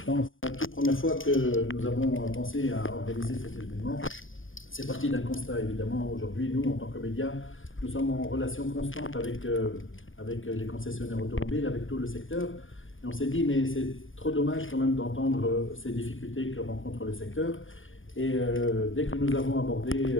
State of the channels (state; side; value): late; right; 0.58 ms